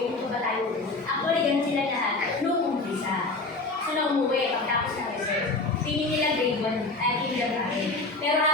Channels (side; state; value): right; quieter; 3.3 dB